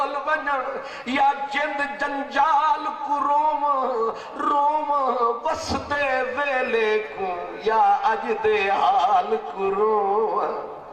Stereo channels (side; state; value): both; identical; correlation 1.00